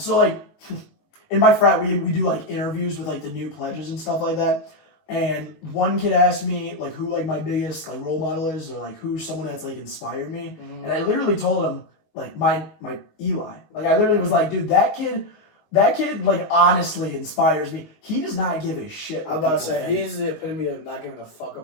like, in my frat, we do like interviews with like the new pledges and stuff like that. And one kid asked me like who like my biggest like role model is, or like who's someone that's like inspired me. Mm-hmm. And I literally told him like my Eli. Like I literally was like, dude, that kid like honestly inspires me. He does not give a shit. I'm about to say he's the epitome of not giving a fuck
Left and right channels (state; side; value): late; right; 19 ms